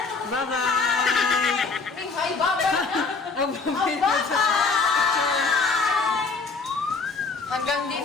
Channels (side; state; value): right; quieter; 4.4 dB